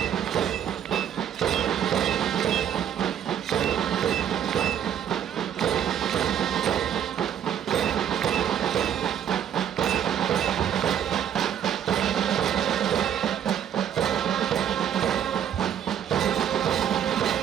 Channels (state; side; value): quieter; left; 9.5 dB